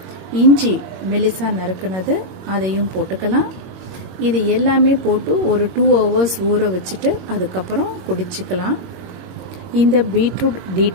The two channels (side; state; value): left; late; 21 ms